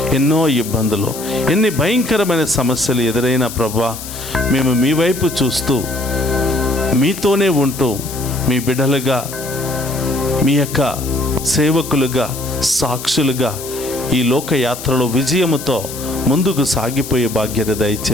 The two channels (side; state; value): left; noise; hiss, 11 dB below the sound